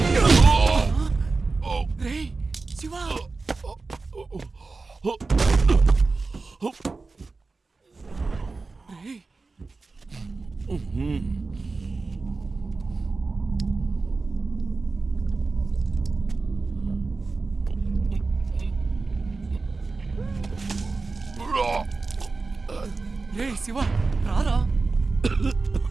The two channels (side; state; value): left; quieter; 3.9 dB